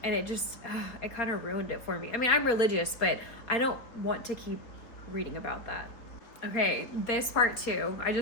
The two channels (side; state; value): right; late; 4.0 ms